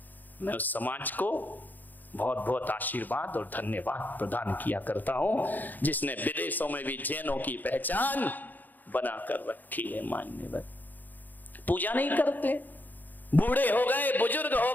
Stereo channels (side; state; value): right; late; 0.085 ms